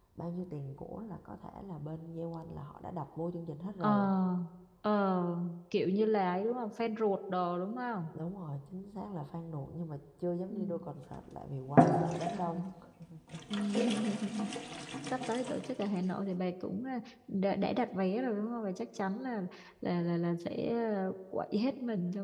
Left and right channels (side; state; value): both; identical; correlation 1.00